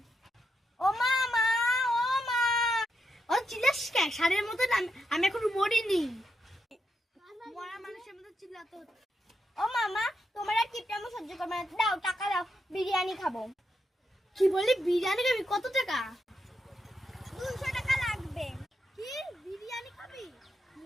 ও মা মা ও মা ও চিল্লাস কে সারের মতো আমি এখন মরিনি মরা মানুষের মতো চিল্লাতে হচ্ছে ও মামা তোমার আর কিপটা আমি সহ্য করবো না দাও টাকা দাও বিরিয়ানি খাবো কি বলি বিরিয়ানি খাবি কত টাকা 200 টাকা লাগবে কি বিরিয়ানি খাবি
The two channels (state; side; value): normal; both; correlation 0.83